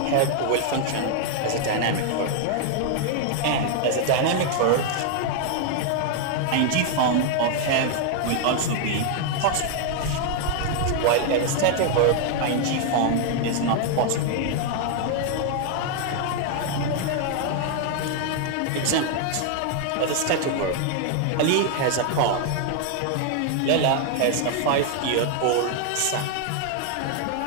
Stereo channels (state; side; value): different; both; correlation 0.00